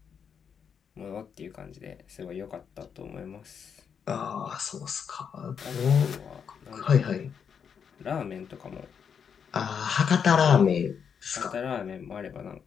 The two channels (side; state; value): right; quieter; 7.1 dB